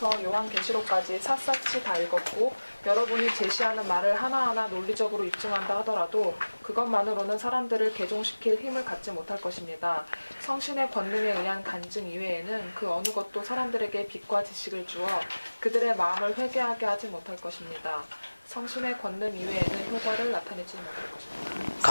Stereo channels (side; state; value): both; inverted; correlation -1.00